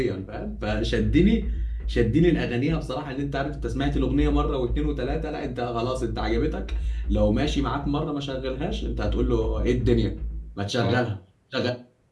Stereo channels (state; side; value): identical; both; correlation 1.00